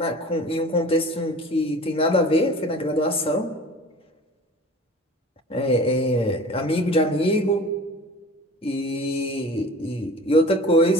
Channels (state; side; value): normal; both; correlation 0.41